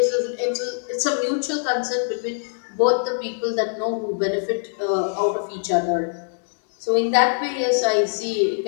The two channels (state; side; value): silent; right; digital silence